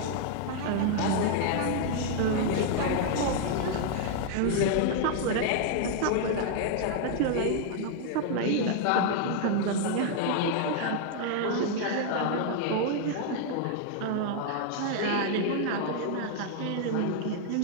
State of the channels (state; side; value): different; both; correlation -0.01